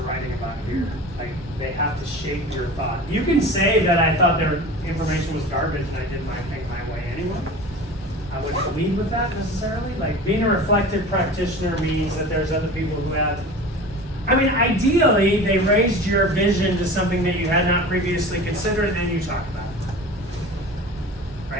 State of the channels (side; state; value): both; normal; correlation 0.36